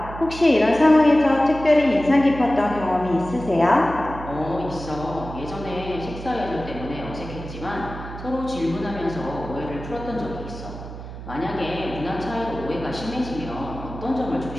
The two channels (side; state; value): right; noise; hum, 11 dB below the sound